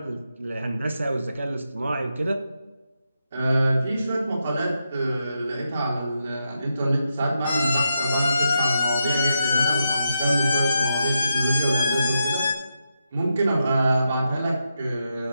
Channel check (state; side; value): inverted; both; correlation -0.85